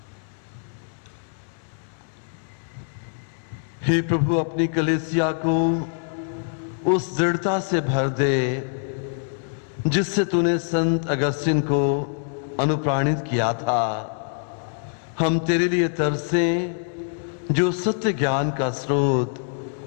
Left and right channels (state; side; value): silent; right; digital silence